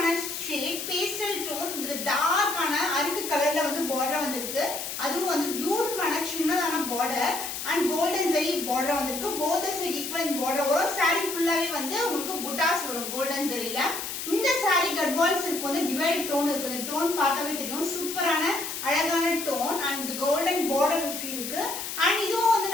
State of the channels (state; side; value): noise; left; hiss, 6 dB below the sound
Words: shade pastel tone with dark ana arukku color la vandu border vandirukku adu vandu beautiful ana chinnadana border and golden zari border vandirukku both the side equal in border varum saree full ave vandu ungalku buttas varum golden zari la இந்த sorry Gadwal silk வந்து divide tone இருக்கு. இந்த tone பார்த்தாவே தெரியும் சூப்பரான அழகான tone and golden border இருக்கு. And இதுவும் வந்து